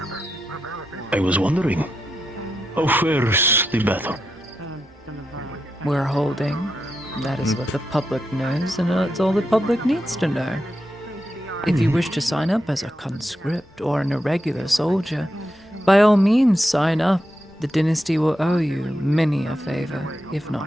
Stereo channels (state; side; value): normal; both; correlation 0.86